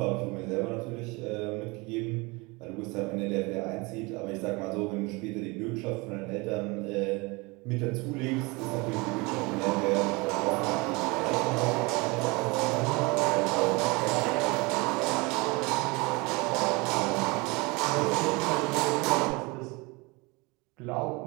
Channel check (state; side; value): quieter; left; 26.0 dB